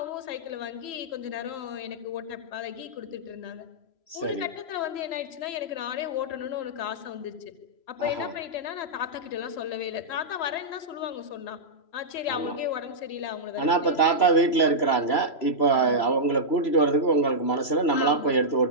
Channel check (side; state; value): right; late; 3.0 ms